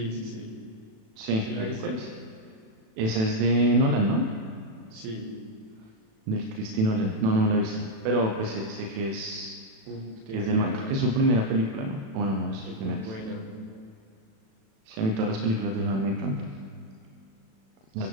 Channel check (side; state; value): left; late; 36 ms